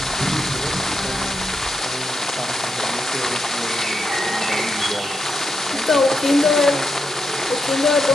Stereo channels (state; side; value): normal; both; correlation 0.84